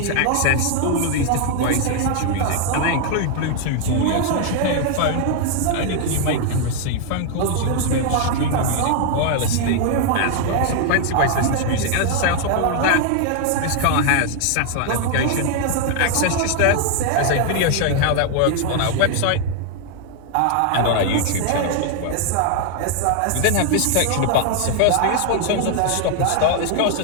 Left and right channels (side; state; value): both; different; correlation 0.00